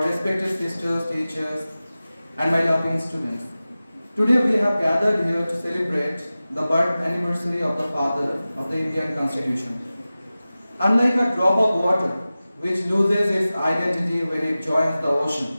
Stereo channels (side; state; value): both; inverted; correlation -0.96